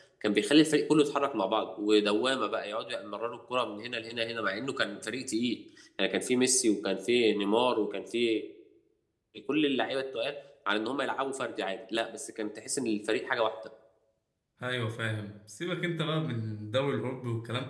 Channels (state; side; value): identical; both; correlation 1.00